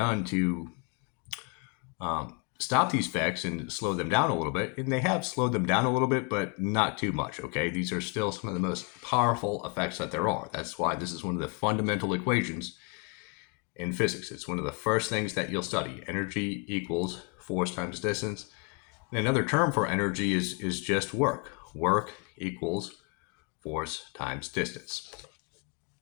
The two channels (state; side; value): quieter; right; 33.5 dB